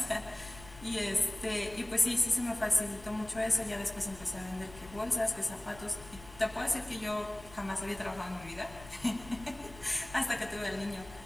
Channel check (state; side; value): noise; left; rumble, 18 dB below the sound